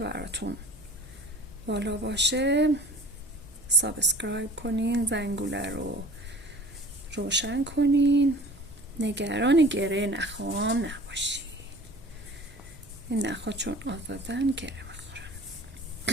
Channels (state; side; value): noise; right; hum, 28 dB below the sound